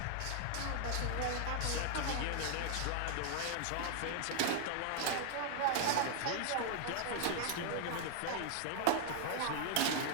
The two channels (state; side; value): different; both; correlation 0.00